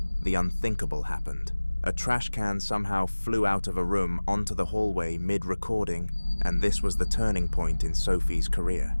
the unthinkable happened. A trash can somehow flew out of a room onto the hallway mid-recording, and this was the turning point in Sophie's career.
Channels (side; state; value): both; inverted; correlation -1.00